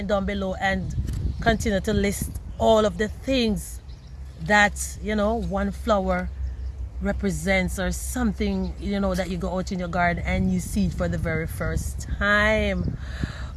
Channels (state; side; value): identical; both; correlation 1.00